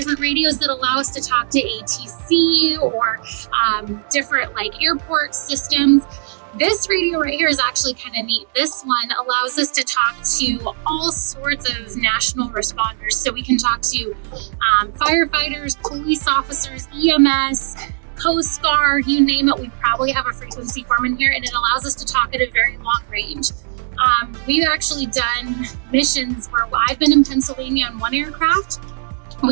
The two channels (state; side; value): silent; left; digital silence